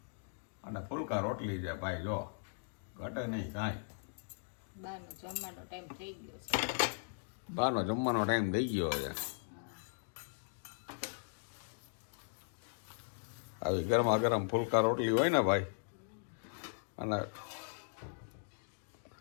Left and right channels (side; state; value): right; silent; digital silence